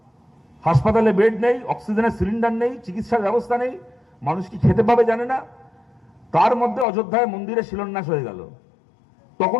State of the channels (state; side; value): drops out; right; at 6.9 s